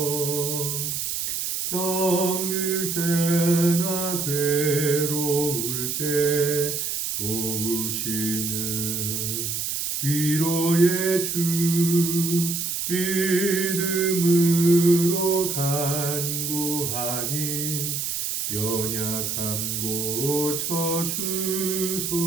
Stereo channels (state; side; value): noise; right; hiss, 2 dB below the sound